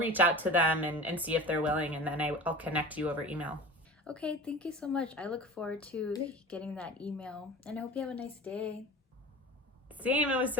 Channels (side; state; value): both; normal; correlation 0.37